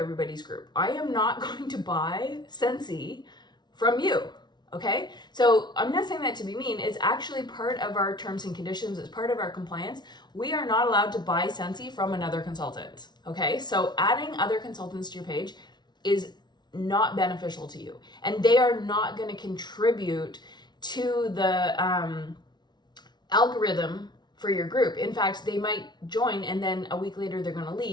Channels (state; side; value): late; right; 0.20 ms